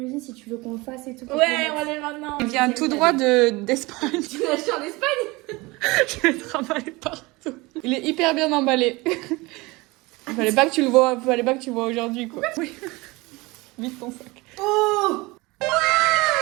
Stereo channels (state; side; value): quieter; left; 23.2 dB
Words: si tu veux qu'on le fasse et tout. Ouais, on va aller maintenant. Il vient tout droit d'Espagne. Tu l'as acheté en Espagne? Je vais te remballer partout. Il est hyper bien emballé. Fallait pas que tu le vois aujourd'hui, quoi. Oui. Vite ton sac. Oh!